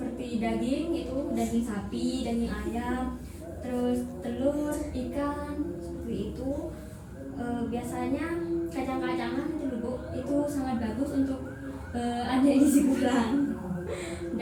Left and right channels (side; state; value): both; identical; correlation 1.00